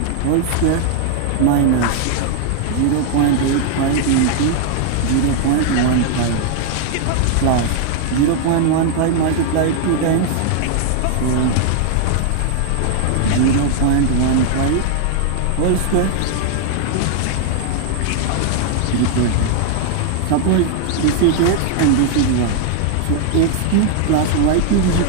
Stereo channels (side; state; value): both; different; correlation 0.00